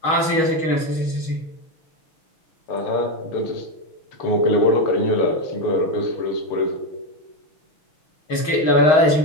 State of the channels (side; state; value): right; late; 6.3 ms